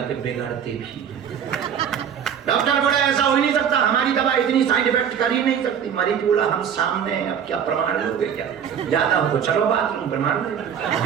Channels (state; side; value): quieter; left; 8.2 dB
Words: कि बिगड़ते भी। डॉक्टर बोला ऐसा हो ही नहीं सकता, हमारी दवा इतनी साइड इफेक्ट कर ही नहीं सकती। मरीज बोला हम सामने हैं, अब क्या प्रमाण लोगे क्या, ज्यादा हो तो चलो बाथरूम प्रमाण लो।